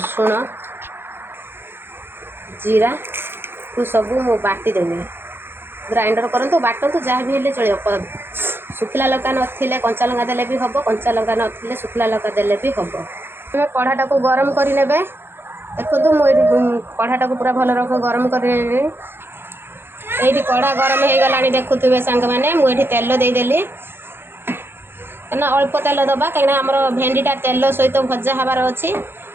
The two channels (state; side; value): late; left; 0.11 ms